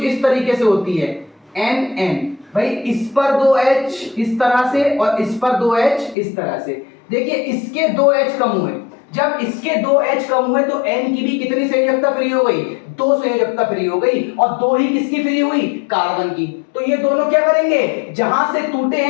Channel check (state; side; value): drops out; right; at 6.2 s